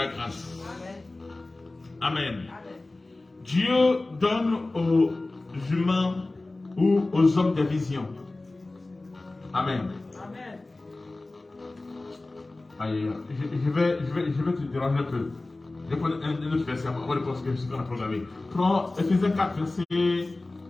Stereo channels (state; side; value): quieter; right; 3.0 dB